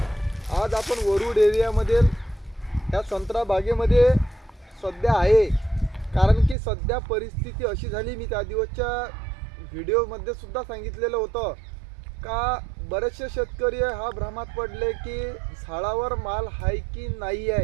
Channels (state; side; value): drops out; left; at 6.6 s